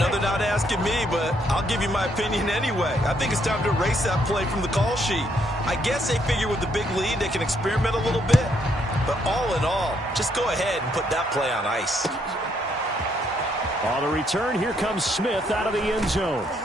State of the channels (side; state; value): both; normal; correlation 0.72